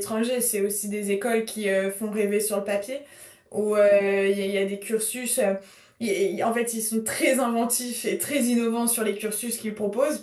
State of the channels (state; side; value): identical; both; correlation 1.00